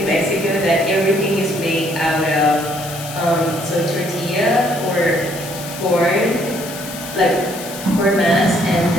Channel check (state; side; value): noise; left; hiss, 12 dB below the sound